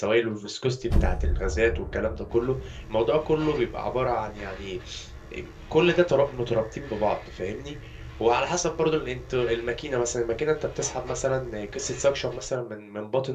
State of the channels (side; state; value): both; identical; correlation 1.00